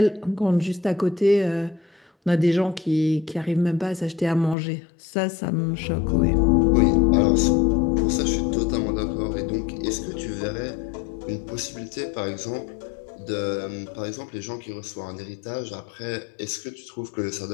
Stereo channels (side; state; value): right; drops out; at 4.5 s